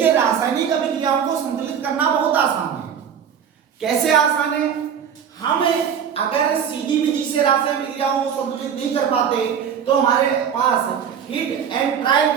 रासायनिक अभिक्रियाओं को संतुलित करना बहुत आसान है। कैसे आसान है, हम अगर सीधी विधि से रासायनिक अभिक्रियाओं को संतुलित नहीं कर पाते तो हमारे पास हिट एंड ट्रायल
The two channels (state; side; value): quieter; left; 7.9 dB